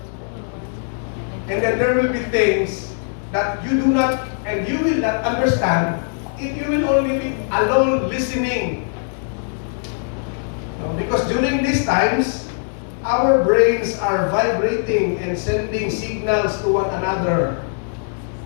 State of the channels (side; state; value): right; silent; 63 dB below the other